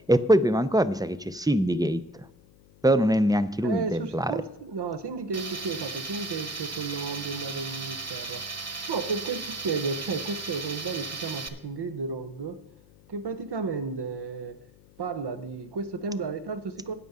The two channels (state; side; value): noise; left; hum, 26 dB below the sound